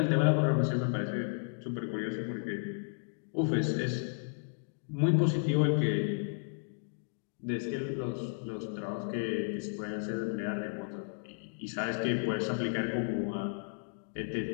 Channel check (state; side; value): silent; right; digital silence